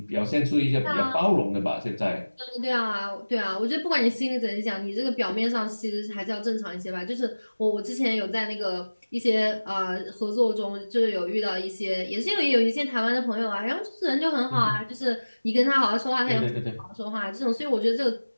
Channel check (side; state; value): both; inverted; correlation -1.00